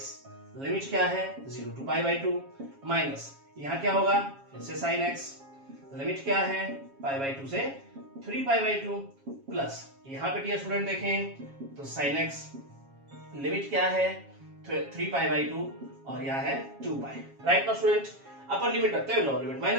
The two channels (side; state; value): left; late; 7.3 ms